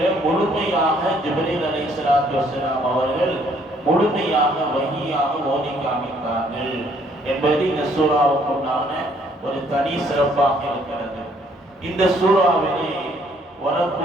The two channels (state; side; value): normal; both; correlation 0.64